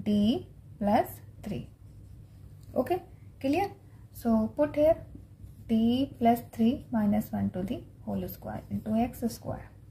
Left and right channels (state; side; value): identical; both; correlation 1.00